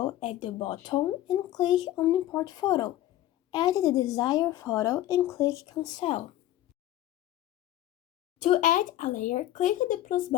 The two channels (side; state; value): right; quieter; 13.8 dB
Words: at the bottom and click on import photo. Add the desired photo and click cancel. To add a layer, click the plus